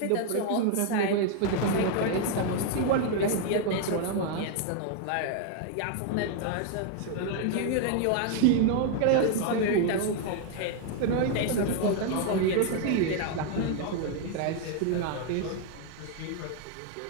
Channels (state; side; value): different; both; correlation 0.00